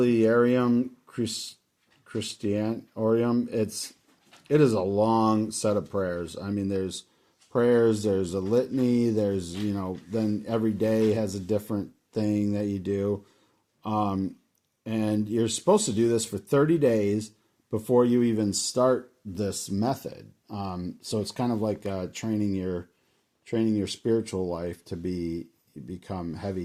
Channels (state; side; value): identical; both; correlation 1.00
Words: Christianorium, it is a long set of prayers. I mean, there's prayers, there's a litany, there's, then every day has a different thing that you do. And you're supposed to do this for 30 days before you even start this method. So it's kind of like training your spiritual life to become